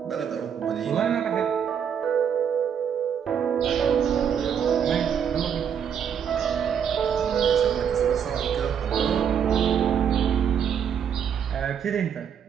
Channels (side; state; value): left; quieter; 8.0 dB